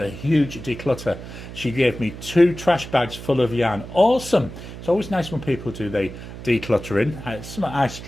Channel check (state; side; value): noise; right; hum, 12 dB below the sound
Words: huge declutter. She gave me 2 trash bags full of yarn. Awesome. It's always nice when people do the decluttering. It's something I